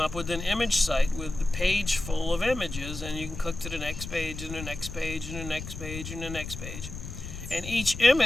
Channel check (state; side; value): noise; left; rumble, 9 dB below the sound